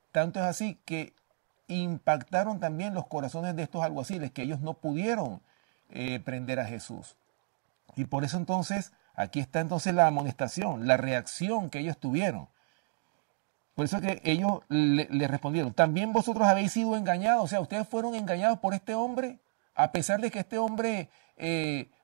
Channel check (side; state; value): left; silent; digital silence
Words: tanto es así que impactaron también los corazones de estos alguaciles, que ellos no pudieron prender a Jesús. Y por eso entonces, aquí está entonces la amonestación, la reacción que ellos tuvieron. Por eso que ellos le respondieron, también vosotros habéis sido engañados, o sea, ustedes fueron engañados por este hombre, a pesar de que este hombre,